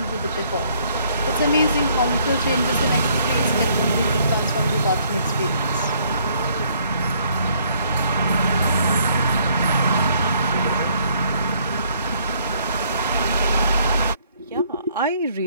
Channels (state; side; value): inverted; both; correlation -0.65